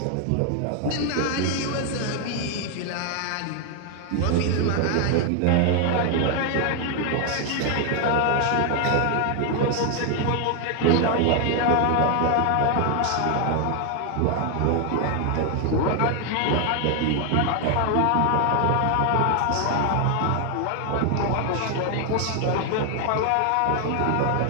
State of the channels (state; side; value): different; both; correlation 0.00